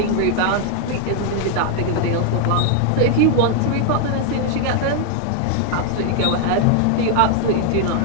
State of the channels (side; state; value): both; different; correlation 0.00